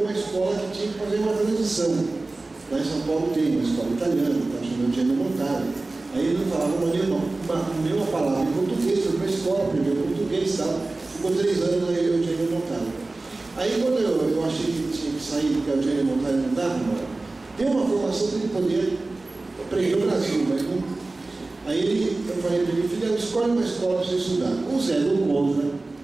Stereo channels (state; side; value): quieter; left; 3.2 dB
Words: escola que tinha que fazer uma transição. Lá em São Paulo tem uma escola italiana, está chamando de Gianni Montale. Aí ele não falava nenhuma palavra em português, foi para a escola, aprendeu português e tal. Ficou 3 anos aí o Gianni Montale. Aí quando eu achei que tinha que sair, porque o Gianni Montale não dava, deu uma formação que ele podia aprender no Brasil, mas não. Aí eu falei para ele: filho, escolhe uma escola para você estudar. O Zé do Contra